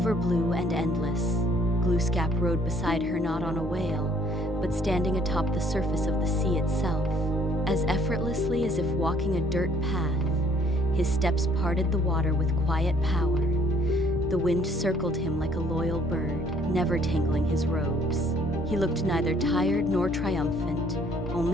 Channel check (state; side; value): normal; both; correlation 0.61